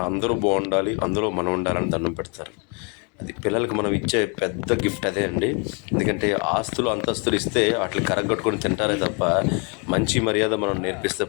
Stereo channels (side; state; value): right; quieter; 34.9 dB